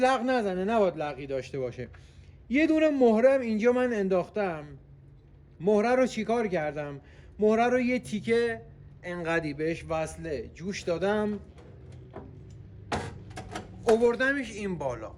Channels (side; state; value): both; identical; correlation 1.00